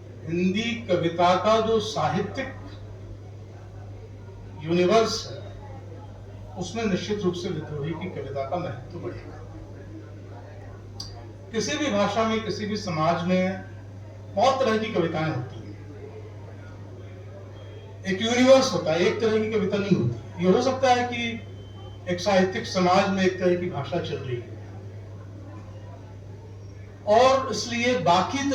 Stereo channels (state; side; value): identical; both; correlation 1.00